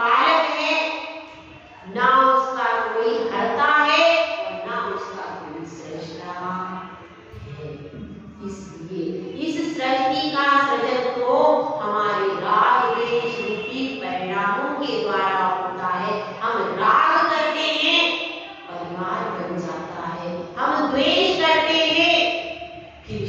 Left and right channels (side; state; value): both; identical; correlation 1.00